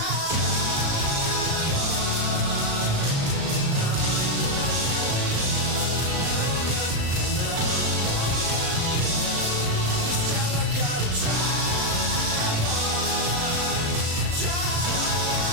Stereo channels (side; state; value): left; late; 36 ms